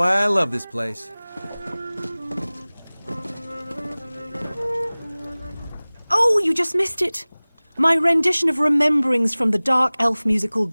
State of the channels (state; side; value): inverted; both; correlation -1.00